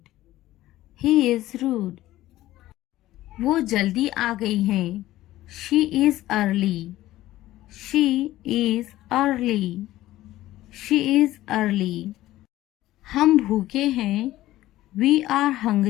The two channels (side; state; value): right; quieter; 15.5 dB